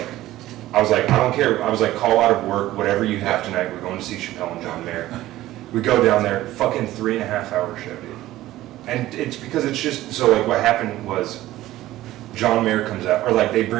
I don't care. I was like, call out of work, whatever you have tonight. We're going to see Chappelle and John Mayer. We go down there, fucking 3.5 hour show, dude. And it's because it's just so like what happened was John Mayer comes out, or like they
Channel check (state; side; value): quieter; left; 15.5 dB